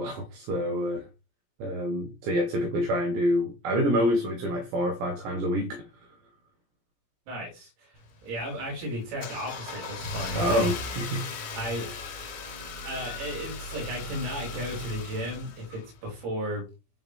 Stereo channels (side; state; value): left; late; 17 ms